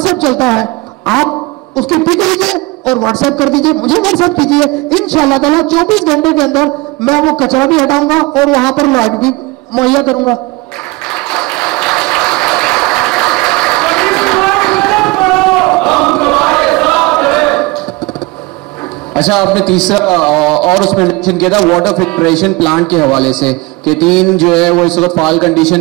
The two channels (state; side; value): quieter; left; 23.4 dB